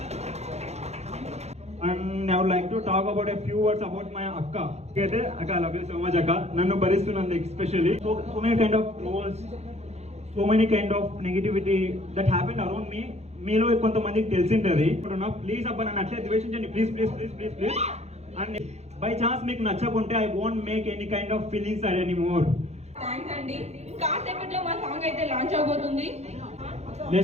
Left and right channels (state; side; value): late; left; 0.31 ms